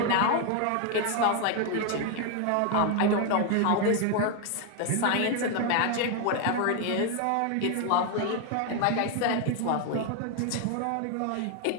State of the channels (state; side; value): different; both; correlation 0.01